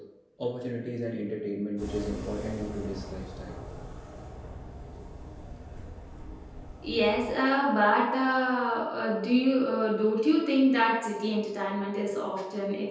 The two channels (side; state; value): both; identical; correlation 1.00